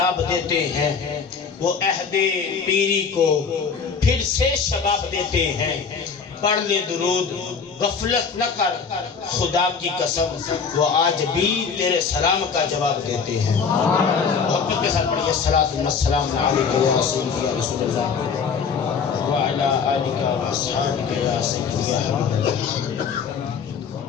دیتے ہیں، وہ عہد پیری کو پھر سے شباب دیتے ہیں، پڑھ لے درود غفلت نہ کر خدا کی قسم، وہ آج بھی تیرے سلام کا جواب دیتے ہیں۔ محبت کے ساتھ پڑھیے الصلاۃ والسلام علیک یا رسول اللہ وعلی آلک واصحابک یا سیدی یا حبیب اللہ۔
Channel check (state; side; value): quieter; right; 5.9 dB